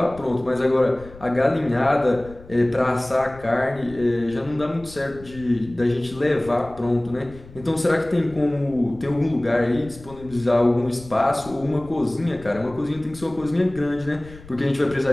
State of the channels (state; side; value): noise; left; rumble, 19 dB below the sound